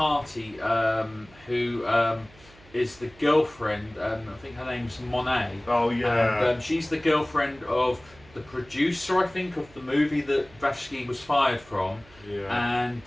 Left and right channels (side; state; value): right; noise; hum, 25 dB below the sound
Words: who is the girlfriend, I think her name's Monet. Oh yeah. And she's the girlfriend of the producer, I think, of the movie that Vashki was fired from. Yeah.